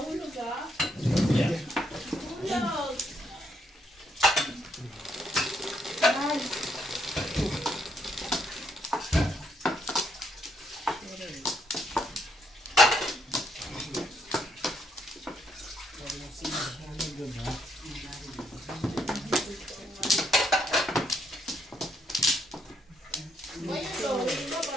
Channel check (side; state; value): both; normal; correlation 0.74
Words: ka? Yeah. Mahulog!